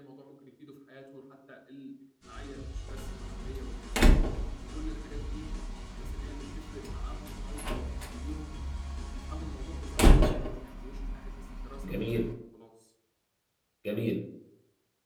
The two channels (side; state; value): both; identical; correlation 1.00